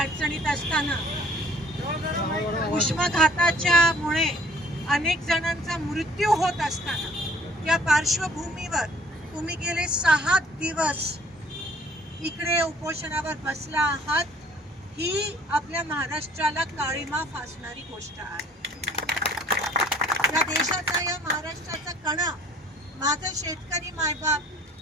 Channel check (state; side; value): normal; both; correlation 0.55